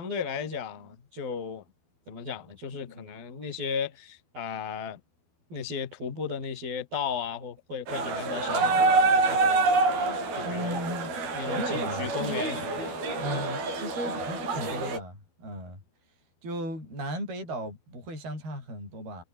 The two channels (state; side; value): late; left; 12 ms